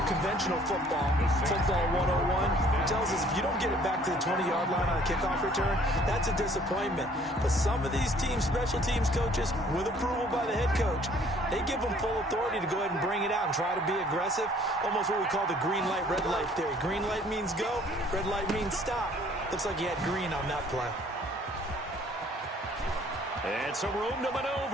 conventional football 101, tells us if you don't get it back to the 20-yard line on a kickoff return, that's a disappointment. But some of these teams, special teams coaches, with approval by the head coach, they give them full authority to go ahead and bring it out and try to be aggressive. Almost what we call the green light, red light theory. Green light means go, red light means stop. Looks like he had green on that play. And some room to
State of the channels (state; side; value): normal; both; correlation 0.58